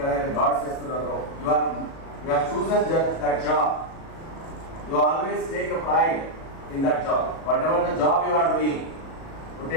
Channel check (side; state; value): right; late; 37 ms